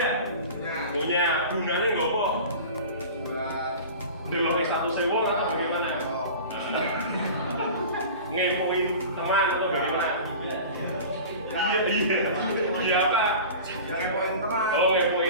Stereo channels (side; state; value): both; inverted; correlation -0.36